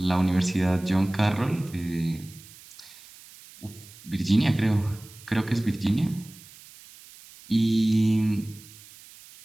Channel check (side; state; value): right; noise; hiss, 21 dB below the sound